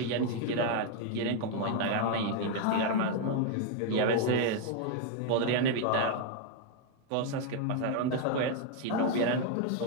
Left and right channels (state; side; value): different; both; correlation 0.00